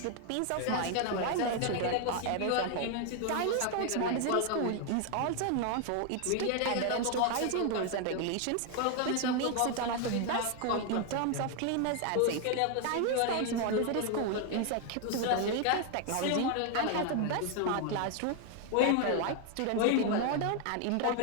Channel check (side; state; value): both; different; correlation 0.00